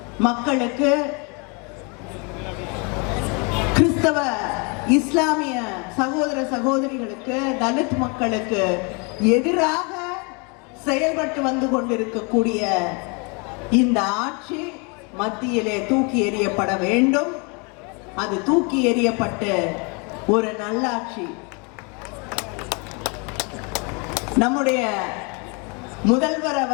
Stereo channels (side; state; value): right; quieter; 32.7 dB